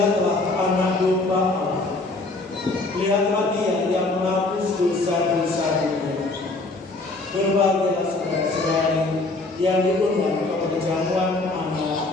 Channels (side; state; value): right; quieter; 3.2 dB